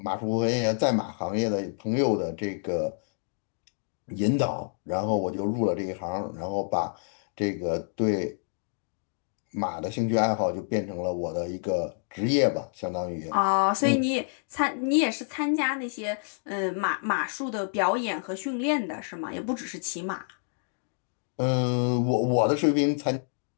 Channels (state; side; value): silent; right; digital silence